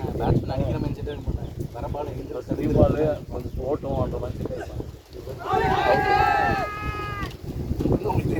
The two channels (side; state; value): both; identical; correlation 1.00